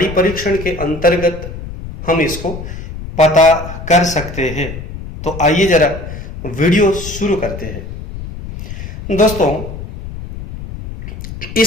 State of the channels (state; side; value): noise; left; rumble, 10 dB below the sound